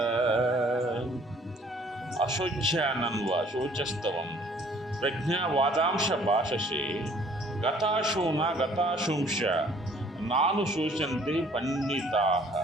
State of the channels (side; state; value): both; normal; correlation 0.57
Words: అశోచ్యానన్వ శోచస్తవం ప్రజ్ఞావాదాంశ భాషసే గతాశూన గతాశుంశ నాను శోచంతి పండితా.